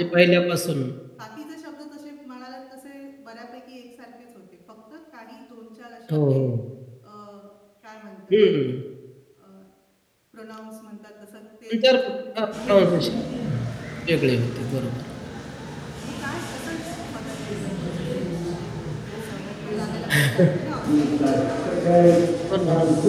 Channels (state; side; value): identical; both; correlation 1.00